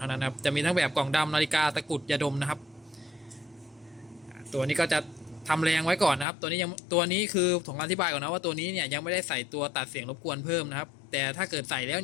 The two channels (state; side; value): drops out; right; at 6.2 s